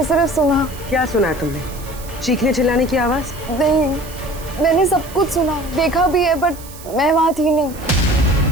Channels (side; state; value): right; noise; hiss, 18 dB below the sound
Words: सिर्फ सुना। क्या सुना है तुमने? चीखने चिल्लाने की आवाज? नहीं, मैंने सब कुछ सुना, देखा भी है, बट मैं वहाँ थी नहीं।